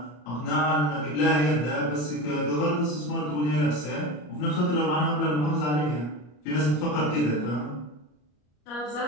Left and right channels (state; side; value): late; right; 33 ms